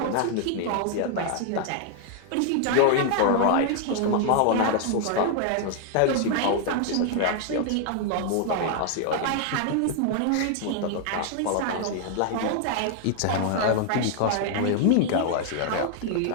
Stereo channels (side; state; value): both; different; correlation 0.00